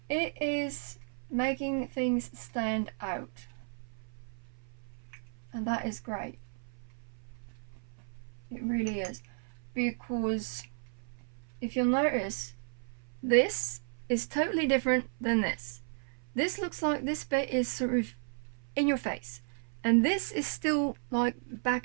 it is making things stand out. And that is great. It really is. Because if you'll notice, this is totally different than this. This looks like this bit is sort of in your face. And this is still like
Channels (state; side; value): silent; left; 55 dB below the other